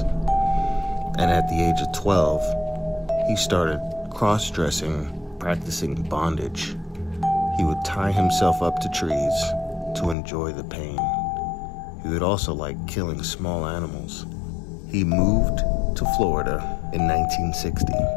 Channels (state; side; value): drops out; right; at 10.2 s